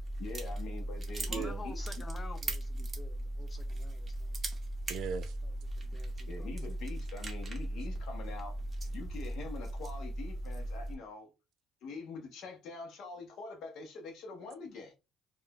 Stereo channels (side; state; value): both; normal; correlation 0.86